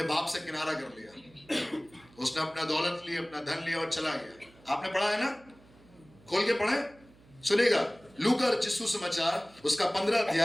बाप से किनारा कर लिया, उसने अपना दौलत ली, अपना धन लिया और चला गया। आपने पढ़ा है ना, खोल के पढ़े, सुनेगा। लूका रचित सुसमाचार उसका 15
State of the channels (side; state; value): right; noise; hum, 27 dB below the sound